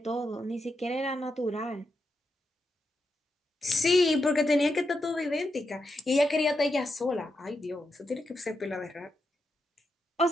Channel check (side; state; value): both; normal; correlation 0.85